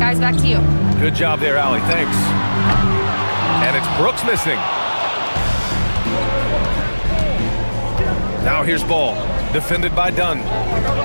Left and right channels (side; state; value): both; inverted; correlation -1.00